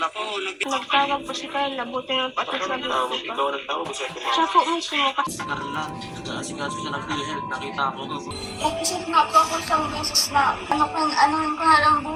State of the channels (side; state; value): both; identical; correlation 1.00